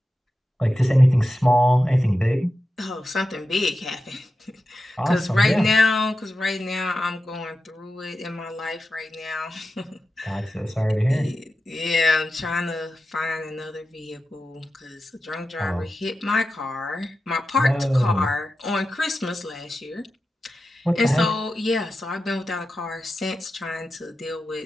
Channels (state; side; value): normal; both; correlation 0.91